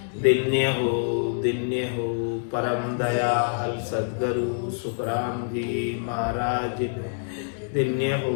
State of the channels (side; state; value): right; silent; digital silence